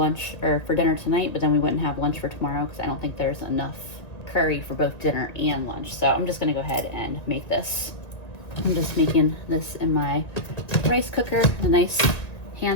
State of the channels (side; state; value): right; late; 2.0 ms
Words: or for dinner tonight, but then we wouldn't have lunch for tomorrow because I don't think there's enough curry for both dinner and lunch. So I'm just gonna go ahead and make this. I'm just making this in my rice cooker, a nice